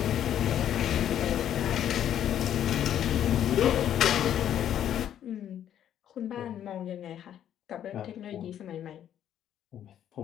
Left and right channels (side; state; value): right; quieter; 10.4 dB